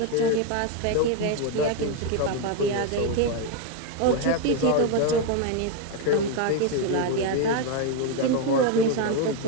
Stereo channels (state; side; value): different; both; correlation 0.01